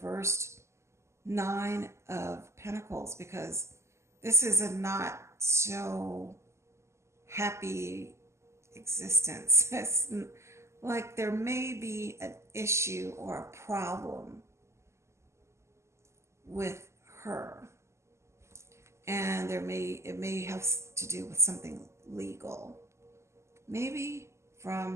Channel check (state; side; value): late; left; 0.13 ms